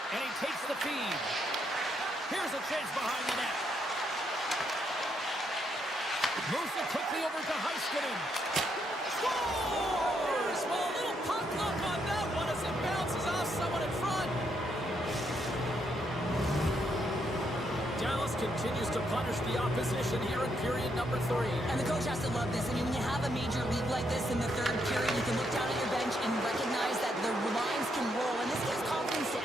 And he takes the feed. Here's a chance behind the net. Moves it quickly over to Heiskanen. Scores! Well, a little puck luck on that one as it bounces off someone in front. Dallas continues to punish the opposition here in period number 3. And the coach has to love this. I mean, when you have a major league like this in the third period, you can look down at your bench and recognize that the lines can roll. And this gives confidence to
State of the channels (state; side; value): normal; both; correlation 0.77